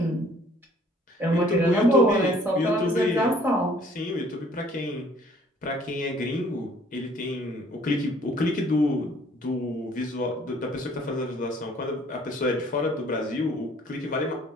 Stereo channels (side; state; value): both; normal; correlation 0.58